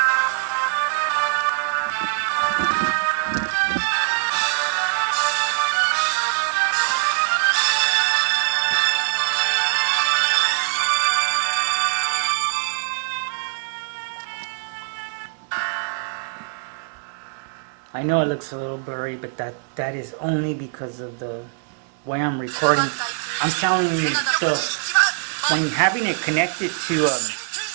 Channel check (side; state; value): left; silent; digital silence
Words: I know it looks a little blurry, but that is only because of the way I'm recording. I'm telling you, when having it connected to